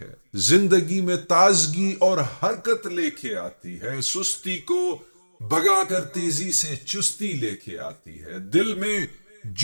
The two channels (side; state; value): both; inverted; correlation -1.00